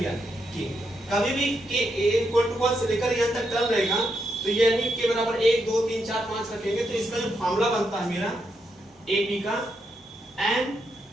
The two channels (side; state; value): both; normal; correlation 0.81